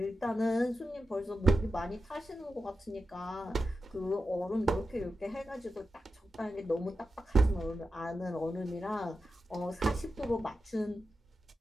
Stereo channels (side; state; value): both; normal; correlation 0.90